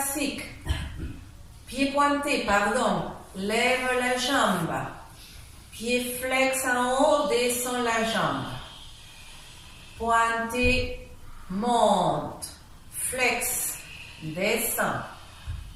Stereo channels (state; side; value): identical; both; correlation 1.00